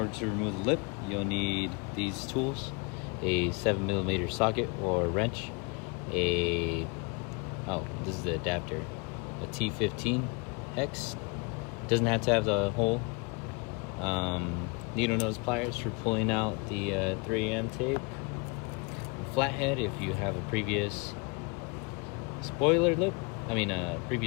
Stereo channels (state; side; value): quieter; right; 31.7 dB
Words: to remove the lip, you'll need these tools. A 7mm socket or wrench. This is the adapter. A T15 hex. Doesn't have to have the hole. Needle nose pliers for pulling out the 3M tape. A flathead if you have a previous